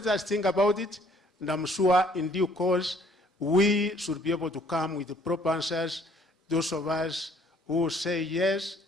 us think about it, and I'm sure in due course, we should be able to come with the proper answers, those of us who say, yes,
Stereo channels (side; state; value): both; normal; correlation 0.61